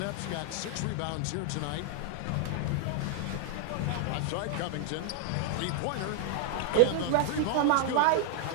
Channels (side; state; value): both; different; correlation 0.00